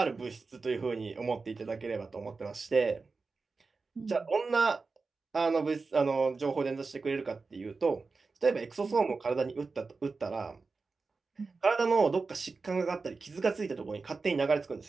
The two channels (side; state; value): left; quieter; 4.2 dB